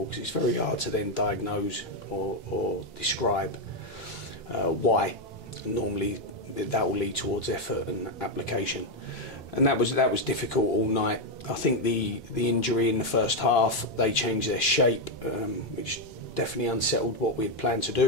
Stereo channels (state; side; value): normal; both; correlation 0.04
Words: because it's very hard to then diagnose or describe why. And normally that will lead towards effort and application, and that was difficult all night. I think the injury in the first half, they changed their shape, which definitely unsettled what we had planned to